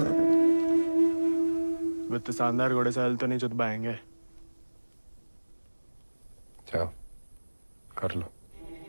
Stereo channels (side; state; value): both; inverted; correlation -1.00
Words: वित्त शानदार घोड़े से हल तो नहीं चुत पाएंगे। जाओ कर लो।